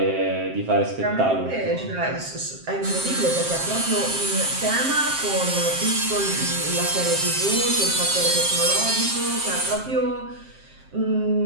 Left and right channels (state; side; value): late; left; 7.6 ms